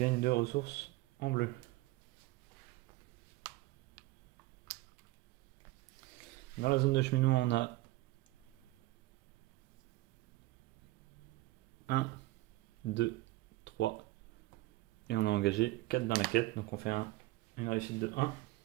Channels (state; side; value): quieter; left; 18.9 dB